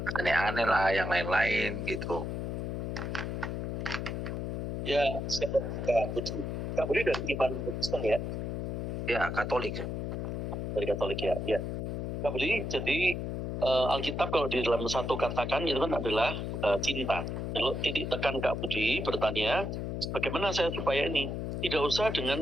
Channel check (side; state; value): left; noise; hum, 3 dB below the sound